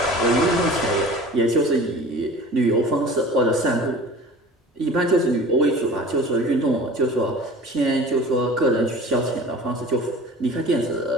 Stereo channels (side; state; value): both; normal; correlation 0.41